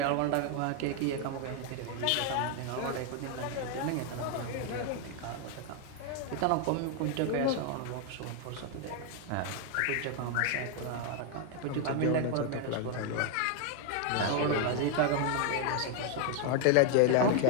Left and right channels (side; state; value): both; different; correlation 0.00